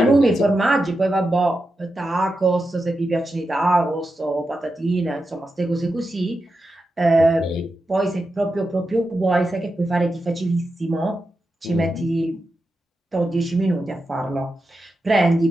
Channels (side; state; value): both; normal; correlation 0.89